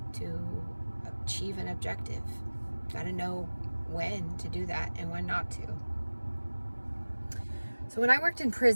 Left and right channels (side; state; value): both; inverted; correlation -1.00